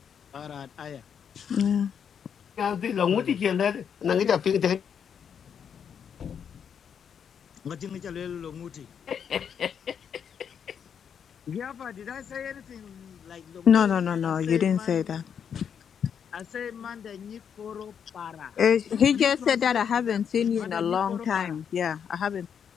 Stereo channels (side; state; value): right; quieter; 7.7 dB